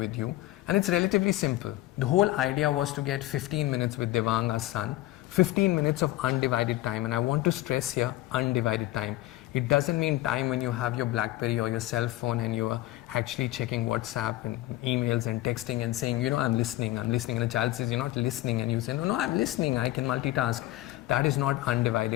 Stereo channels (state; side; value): quieter; right; 16.6 dB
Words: you. And it's relatively simple. The whole idea was to get 15 minutes with Devang, our son, 15 minutes of undivided time. And I want to stress here, undivided time. It doesn't mean time when you have your BlackBerry or your cell phone and you are actually checking WhatsApp and emails and texting and saying, I'm listening. And the child says, you're not listening. And you say, no, I'm listening. I can multitask. That is not